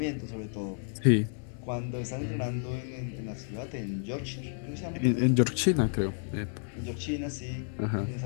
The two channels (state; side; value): silent; right; 57 dB below the other